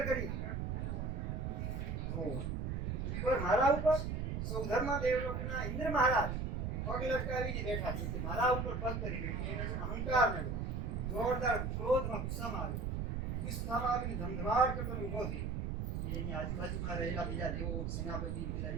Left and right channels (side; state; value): right; noise; rumble, 1 dB below the sound